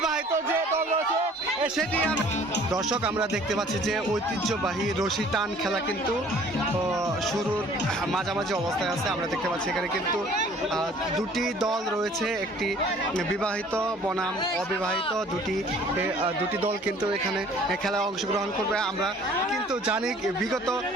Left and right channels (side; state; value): both; normal; correlation 0.53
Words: যে দল রয়েছে সেটি। দর্শক আমরা দেখতে পাচ্ছি যে ঐতিহ্যবাহী রশি টান খেলা কিন্তু শুরুর মাঝামাঝি অবস্থায় আছে। আমরা দেখতে পাচ্ছি এখানে কিন্তু দুটি দল রয়েছে, একটি বিবাহিত বনাম অবিবাহিত দুটি দল কিন্তু এখানে খেলায় অংশগ্রহণ করবে। আমরা কিন্তু জানি বিগত